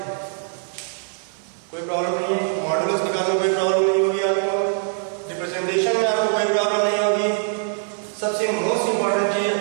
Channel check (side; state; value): left; silent; 64 dB below the other